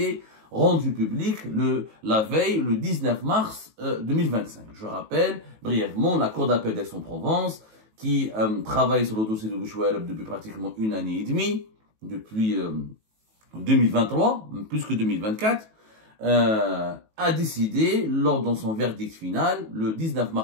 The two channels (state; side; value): late; left; 18 ms